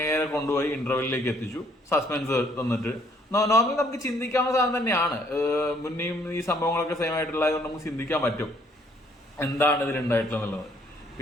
കൊണ്ടുപോയി ഇന്റർവെല്ലിലേക്ക് എത്തിച്ചു. സസ്പെൻസ് തന്നിട്ട് നോർമലി നമുക്ക് ചിന്തിക്കാവുന്ന സാധനം തന്നെയാണ്. മുന്നേയും ഈ സംഭവങ്ങളൊക്കെ സെയിം ആയിട്ടുള്ളത് നമുക്ക് ചിന്തിക്കാൻ പറ്റും എന്താണ് ഇതിലുണ്ടായിട്ടുള്ളത്.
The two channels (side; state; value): both; normal; correlation 0.64